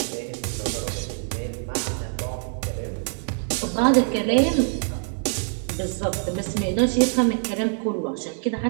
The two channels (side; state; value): left; silent; digital silence